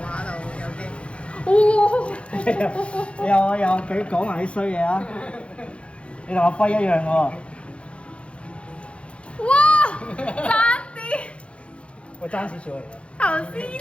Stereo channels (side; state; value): right; late; 0.060 ms